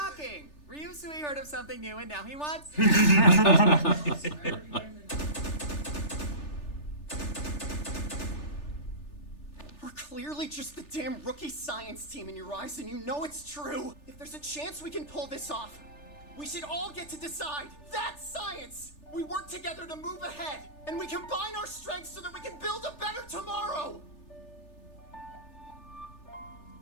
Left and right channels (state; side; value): late; right; 3.4 ms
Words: Ryusui heard of something new and now he wants... We're clearly just the damn rookie science team in your eyes, and you know it's true. If there's a chance we can pull this off, we should all get to decide. That's science! We work together to move ahead, and we combine our strengths so that we can build a better tomorrow!